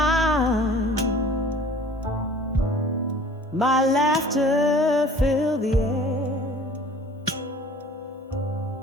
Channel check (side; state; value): both; normal; correlation 0.48